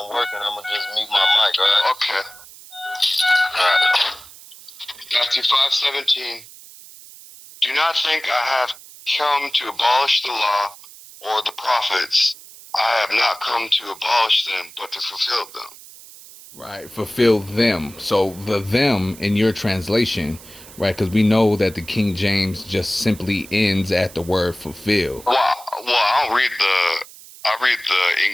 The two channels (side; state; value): right; noise; hiss, 19 dB below the sound